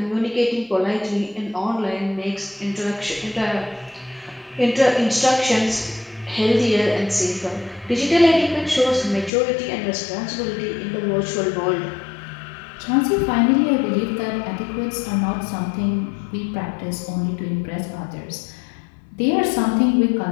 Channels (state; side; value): drops out; right; at 9.3 s